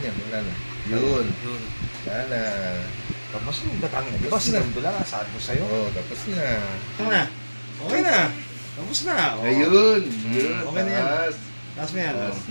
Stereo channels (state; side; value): inverted; both; correlation -1.00